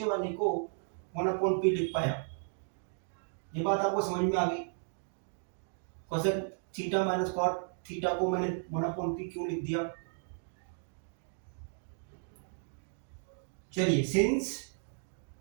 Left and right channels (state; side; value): silent; left; 55 dB below the other